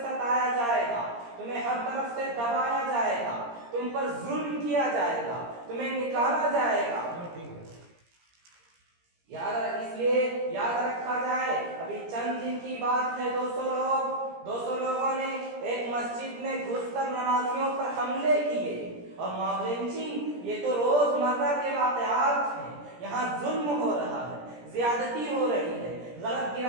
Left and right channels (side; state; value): left; late; 17 ms